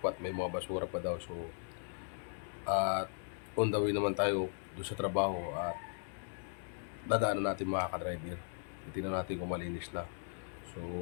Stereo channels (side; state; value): right; silent; 53 dB below the other